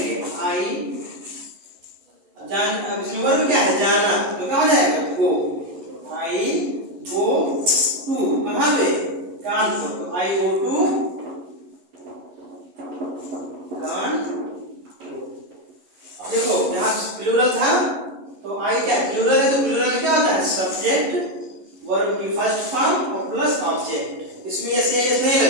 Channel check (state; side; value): late; left; 11 ms